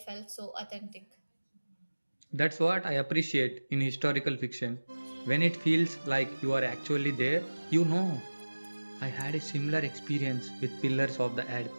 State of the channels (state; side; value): inverted; both; correlation -1.00